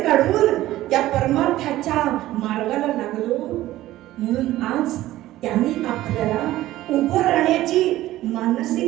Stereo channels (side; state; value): left; quieter; 15.4 dB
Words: काढून या परमार्थाच्या मार्गाला लागलो. म्हणून आज त्यांनी आपल्याला उभं राहण्याची